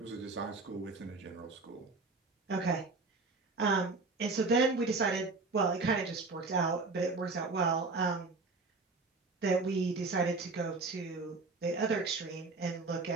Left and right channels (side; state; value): left; quieter; 3.8 dB